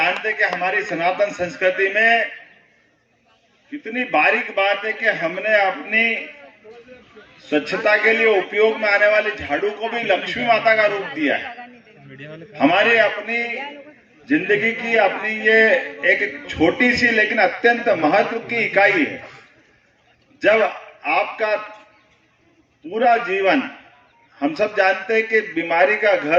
हैं कि हमारी सनातन संस्कृति में कितनी बारीक बात है कि हमने अपनी स्वच्छता के लिए उपयोग में आने वाली झाड़ू को भी लक्ष्मी माता का रूप दिया है। हमारी अपनी जिंदगी की अपनी ये एक छोटी सी लेकिन अत्यंत महत्व की इकाई है। जब आपका पूरा जीवन, हम सब जानते हैं कि बीमारी का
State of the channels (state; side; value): identical; both; correlation 1.00